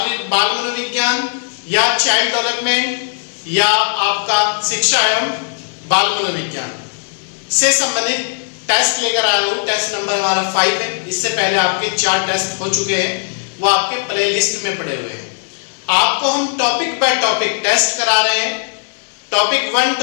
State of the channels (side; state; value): right; silent; 68 dB below the other